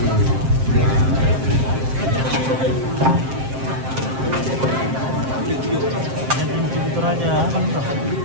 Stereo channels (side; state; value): left; late; 7.6 ms